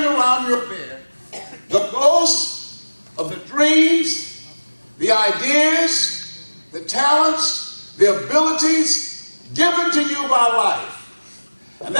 around your bed, the ghosts of the dreams, the ideas, the talents, the abilities given to you by life. And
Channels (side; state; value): both; inverted; correlation -1.00